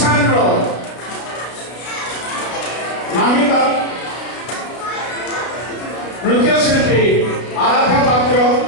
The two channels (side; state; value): right; late; 33 ms